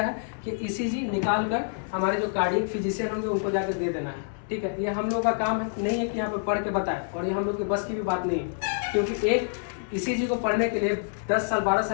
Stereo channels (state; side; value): silent; right; digital silence